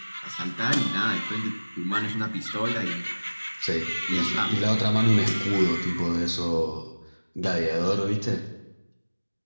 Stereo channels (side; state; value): both; inverted; correlation -1.00